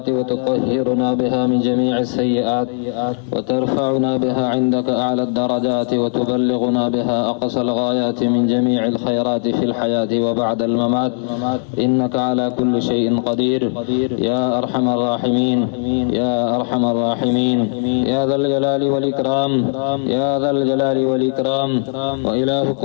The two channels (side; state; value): right; silent; 67 dB below the other